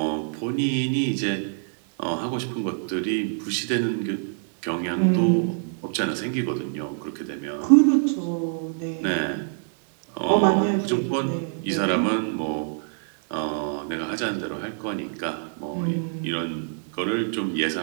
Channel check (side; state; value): left; silent; digital silence